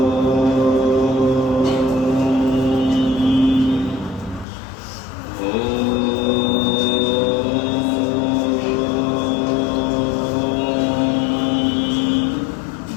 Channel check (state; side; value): drops out; right; at 4.5 s